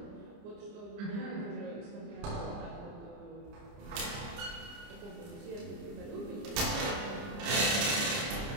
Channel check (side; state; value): left; late; 29 ms